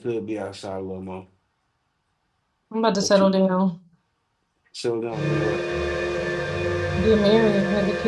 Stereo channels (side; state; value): both; identical; correlation 1.00